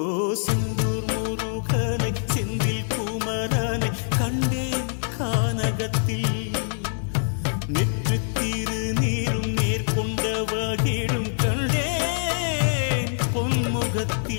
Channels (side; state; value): right; silent; digital silence